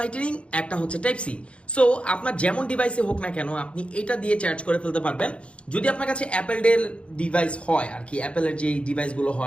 একটা হচ্ছে টাইপ সি। সো আপনার যেমন ডিভাইসে হোক না কেন আপনি এটা দিয়ে চার্জ করে ফেলতে পারবেন। যদি আপনার কাছে অ্যাপেল ডেল ডিভাইস হয় আর কি, অ্যাপেলের যে ডিভাইসগুলো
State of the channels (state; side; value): late; right; 0.060 ms